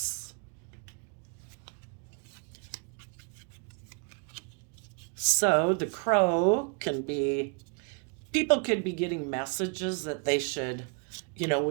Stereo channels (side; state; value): left; quieter; 34.7 dB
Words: So, the crow can be, people could be getting messages that they should,